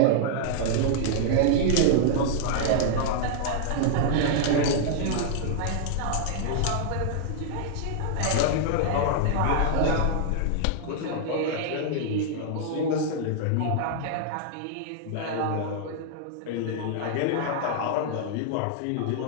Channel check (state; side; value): different; both; correlation -0.01